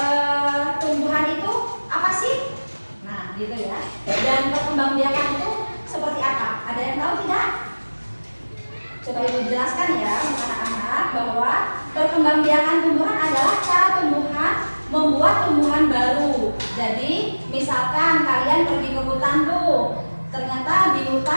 tumbuhan itu apa sih? Nah, gitu ya. Dan perkembangbiakan itu seperti apa? Ada yang tahu tidak? Coba Ibu jelaskan ya, anak-anak, bahwa perkembangbiakan tumbuhan adalah cara tumbuhan membuat tumbuhan baru. Jadi misalkan kalian pergi ke hutan tuh, ternyata di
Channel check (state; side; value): inverted; both; correlation -1.00